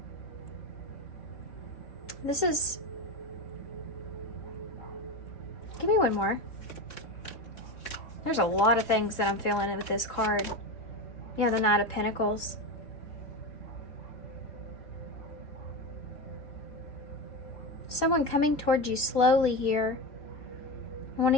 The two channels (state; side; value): late; right; 3.1 ms